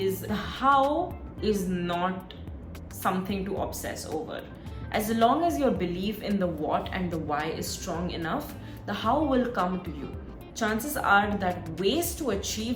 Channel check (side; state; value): both; identical; correlation 1.00